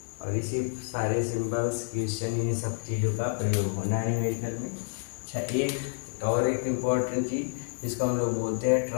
और इसी सारे सिंबल्स, क्वेश्चन, इन सब चीज़ों का प्रयोग होना है न्यूमेरिकल में। अच्छा, एक इम्पॉर्टेंट चीज़ जिसको हम लोग बोलते हैं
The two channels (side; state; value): right; silent; 59 dB below the other